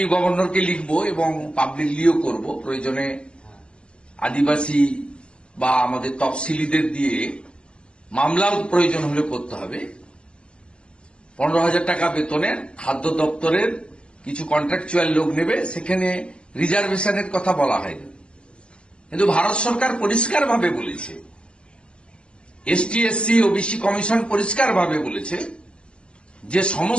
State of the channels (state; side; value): late; right; 0.052 ms